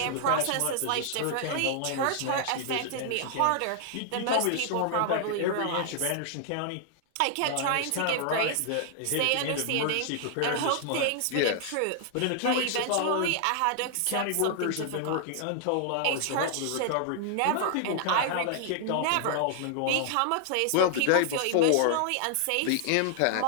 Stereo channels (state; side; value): different; both; correlation 0.00